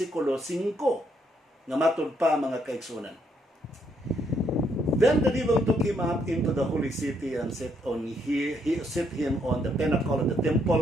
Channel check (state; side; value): normal; both; correlation 0.73